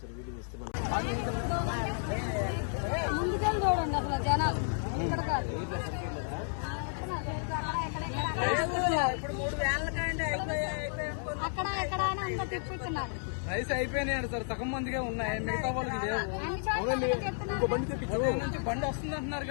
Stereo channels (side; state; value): right; silent; digital silence